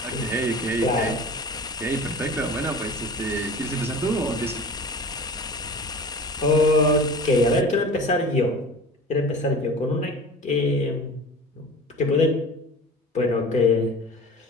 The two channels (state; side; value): normal; both; correlation 0.38